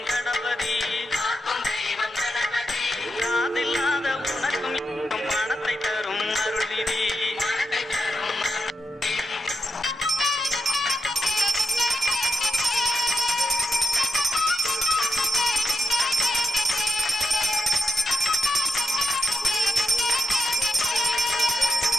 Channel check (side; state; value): both; normal; correlation 0.85